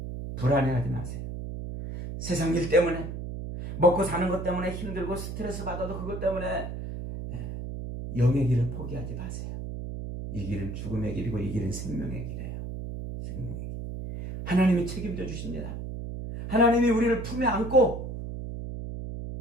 불안해하지 마세요. 세상 일 때문에 먹고 사는 것 때문에 힘들고 스트레스 받아도 그것 때문에 영의 길을 포기하지 마세요. 이 길은 죽음의 길이고 이 길은 생명의 길이에요. 생명의 길. 하나님이 책임져 주십니다. 하나님이 우리를 품에 안고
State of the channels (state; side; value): noise; right; hum, 7 dB below the sound